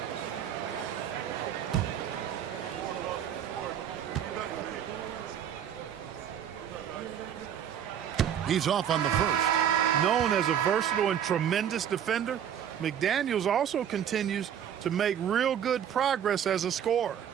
He's off on the first. Known as a versatile and tremendous defender, McDaniels also continues to make real good progress as a scorer.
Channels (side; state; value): left; quieter; 9.3 dB